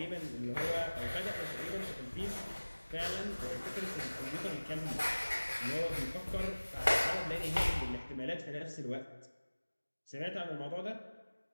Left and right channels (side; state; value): both; inverted; correlation -1.00